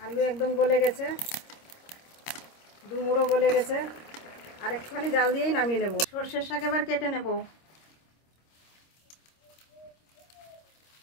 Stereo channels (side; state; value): right; late; 26 ms